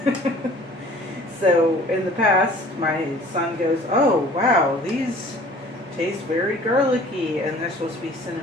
So in the past, my son goes, "Oh wow, these taste very garlicky," and they're supposed to be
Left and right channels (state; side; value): normal; both; correlation 0.49